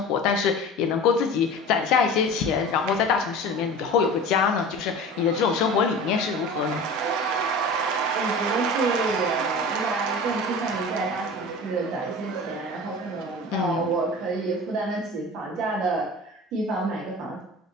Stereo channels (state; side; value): normal; both; correlation 0.36